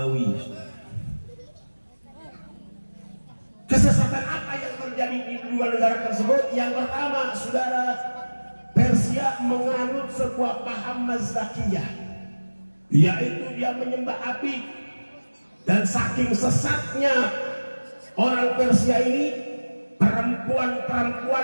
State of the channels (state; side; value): inverted; both; correlation -1.00